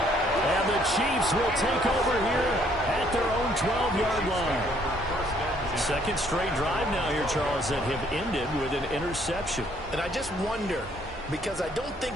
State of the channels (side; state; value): both; normal; correlation 0.65